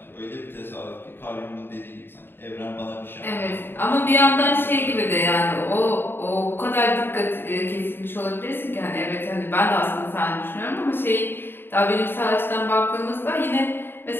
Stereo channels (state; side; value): late; right; 0.10 ms